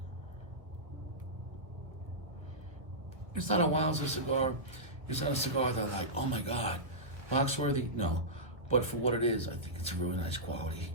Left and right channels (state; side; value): late; left; 1.6 ms